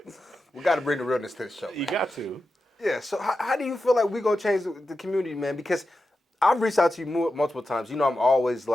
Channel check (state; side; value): normal; both; correlation 0.91